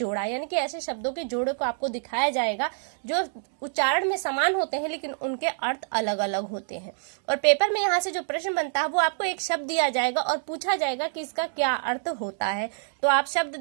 यानी कि ऐसे शब्दों के जोड़े को आपको दिखाया जाएगा जो उच्चारण में समान होते हैं लेकिन उनके अर्थ अलग अलग होते हैं। और पेपर में यहाँ से जो प्रश्न बनता है वो आपको एक शब्द दिया जाएगा और पूछा जाएगा कि इसका क्या अर्थ होता है। तो आप शब्द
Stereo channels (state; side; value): silent; left; digital silence